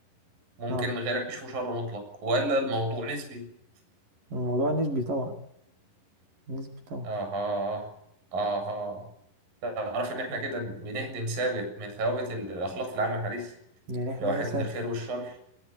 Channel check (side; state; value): left; late; 11 ms